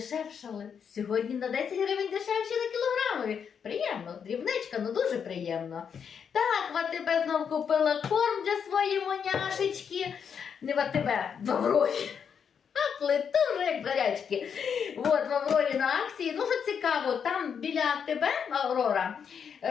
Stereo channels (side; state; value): right; quieter; 7.2 dB